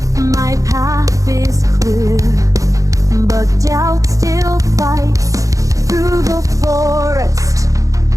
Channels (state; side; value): late; left; 0.16 ms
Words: My path is clear, but doubt still fights. Through the forest,